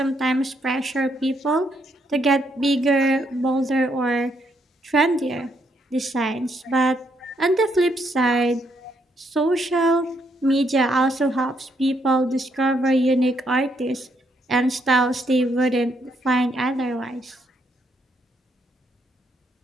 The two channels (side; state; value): both; normal; correlation 0.74